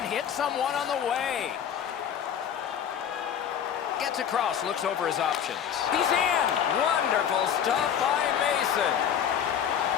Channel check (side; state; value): right; quieter; 8.8 dB